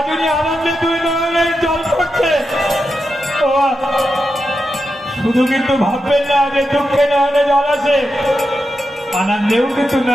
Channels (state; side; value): normal; both; correlation 0.88